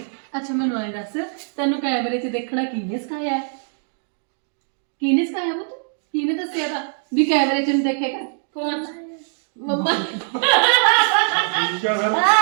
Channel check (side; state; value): left; silent; 64 dB below the other